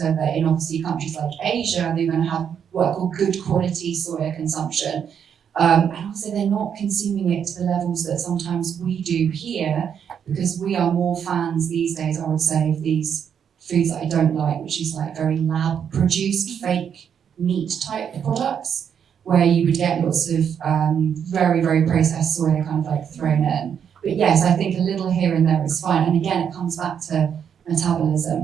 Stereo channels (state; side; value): quieter; left; 8.0 dB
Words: that in obviously countries like Asia, they're going to have what I call good quality soya consumption. And also they're not consuming it to the levels that sometimes we do here, because we are more fans these days, I would say, of these foods that I don't like, which is like very lab produced fake meat type products, where you would get lots of very, very processed soya kind of like thrown in. But yes, I think a little here and there is fine. And again, it comes back to